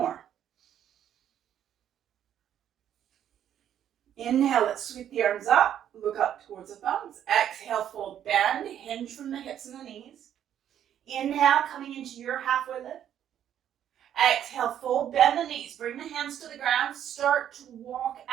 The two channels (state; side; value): quieter; left; 10.2 dB